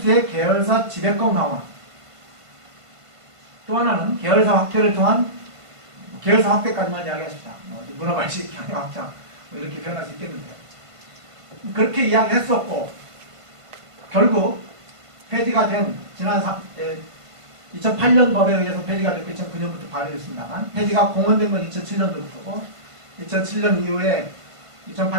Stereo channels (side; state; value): left; late; 1.5 ms